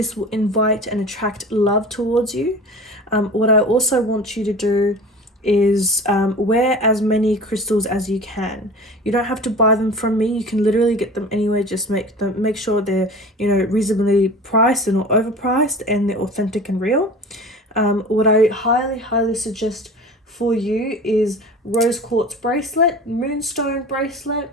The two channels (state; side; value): normal; both; correlation 0.37